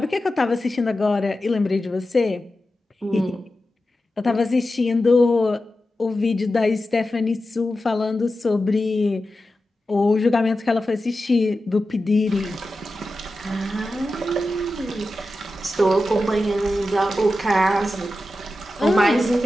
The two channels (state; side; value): normal; both; correlation 0.92